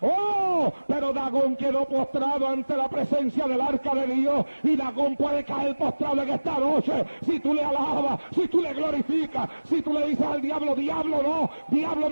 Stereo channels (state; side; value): inverted; both; correlation -1.00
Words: ¡Oh! Pero Dagón quedó postrado ante la presencia del arca de Dios, y Dagón puede caer postrado en esta noche si tú le alabas, si tú le glorificas, si tú le dices al diablo, diablo no, diablo